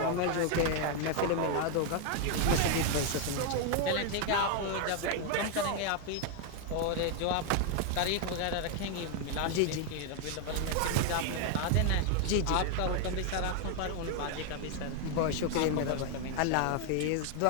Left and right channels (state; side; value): different; both; correlation 0.01